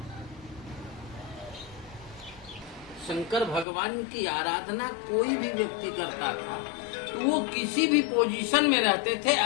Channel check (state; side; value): drops out; right; at 3.7 s